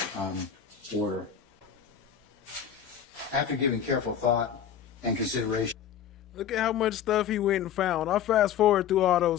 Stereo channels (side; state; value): right; quieter; 8.8 dB